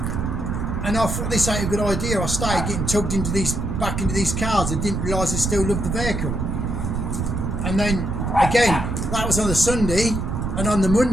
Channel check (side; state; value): right; noise; rumble, 2 dB below the sound